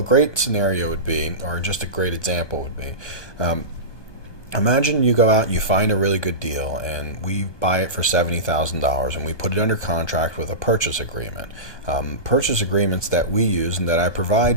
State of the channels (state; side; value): late; right; 1.3 ms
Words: great scenario would be, or just a great example would be, imagine you go out and you find a really good deal and we buy it for $70,000 and we put it under contract with a purchase agreement. Purchase agreements that we use and that I